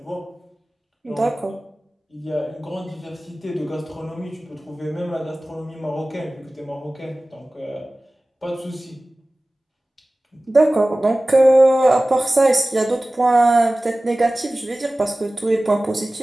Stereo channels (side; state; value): both; normal; correlation 0.97